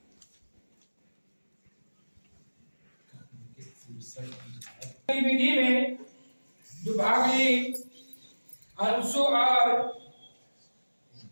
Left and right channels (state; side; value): inverted; both; correlation -1.00